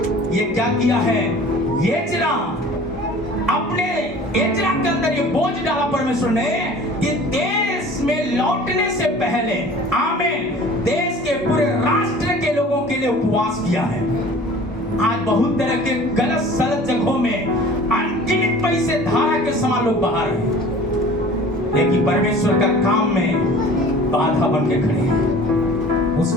ये क्या किया है? अपने एजरा के अंदर ये बोझ डाला परमेश्वर ने कि देश में लौटने से पहले, आमीन, देश के पूरे राष्ट्र के लोगों के लिए उपवास किया है। आज बहुत तरह के गलत सलत जगहों में अनगिनत पैसे धारा के समान लोग बाहर हैं, लेकिन परमेश्वर का काम में बाधा बन के खड़े हैं। उस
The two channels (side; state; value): both; normal; correlation 0.45